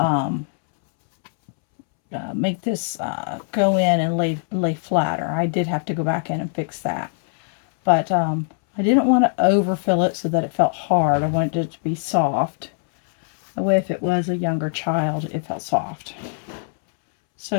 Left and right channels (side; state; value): right; silent; 64 dB below the other